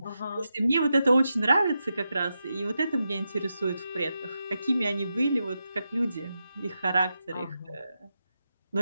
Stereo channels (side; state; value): both; inverted; correlation -0.88